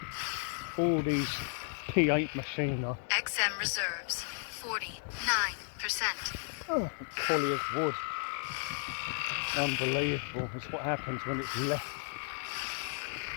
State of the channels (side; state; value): right; silent; 55 dB below the other